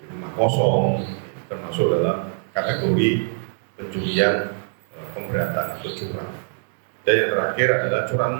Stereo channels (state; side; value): silent; left; digital silence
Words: rumah kosong, termasuk dalam kategori pencurian pemberatan atau curang. Dan yang terakhir adalah